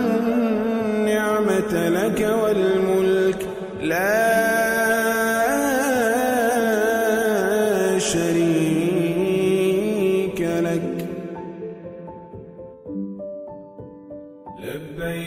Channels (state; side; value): identical; both; correlation 1.00